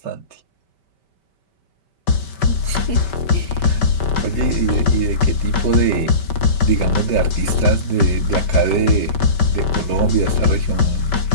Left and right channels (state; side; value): late; right; 5.2 ms